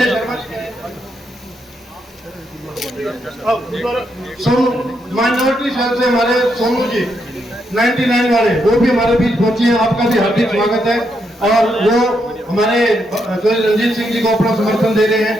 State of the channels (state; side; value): normal; both; correlation 0.79